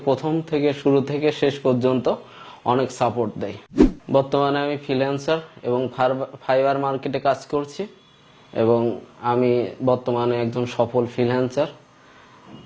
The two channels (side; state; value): both; identical; correlation 1.00